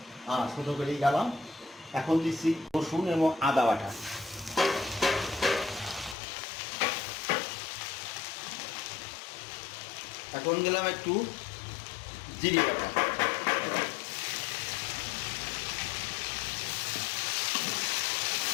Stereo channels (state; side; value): drops out; right; at 6.2 s